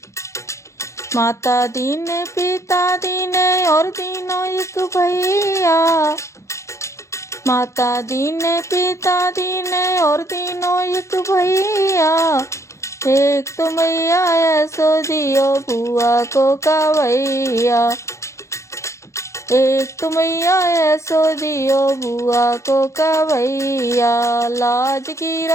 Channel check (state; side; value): late; right; 0.14 ms